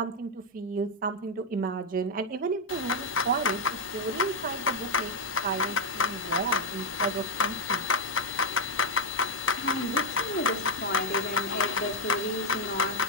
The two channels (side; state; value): both; normal; correlation 0.00